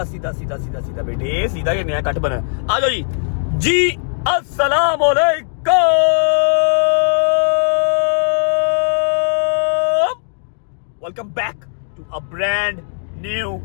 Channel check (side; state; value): right; silent; digital silence